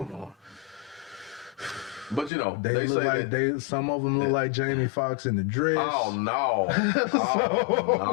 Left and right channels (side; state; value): right; drops out; at 2.3 s